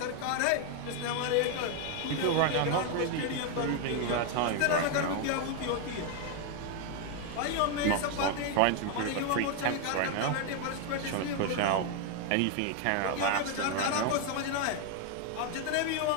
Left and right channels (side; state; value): both; different; correlation 0.01